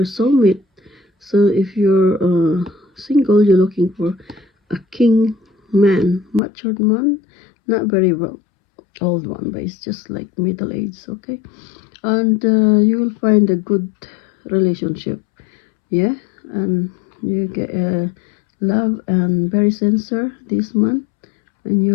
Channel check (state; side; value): drops out; right; at 6.4 s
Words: soulmate. So if you're single, you're looking for a king man, matured man, not very well old one, but it's just like middle age, okay? And you will find a good relationship, yeah? And you get love and very sincere this month in